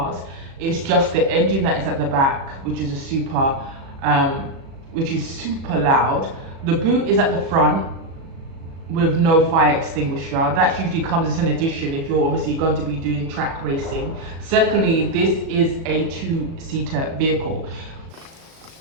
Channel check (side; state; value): left; late; 37 ms